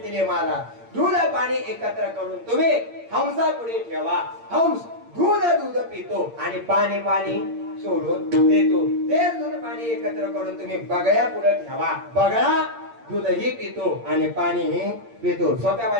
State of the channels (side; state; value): left; late; 8.7 ms